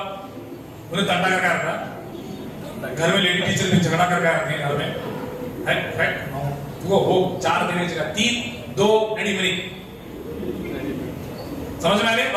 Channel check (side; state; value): both; identical; correlation 1.00